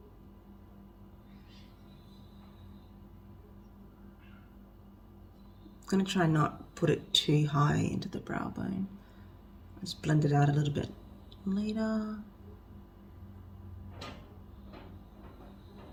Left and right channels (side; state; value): both; identical; correlation 1.00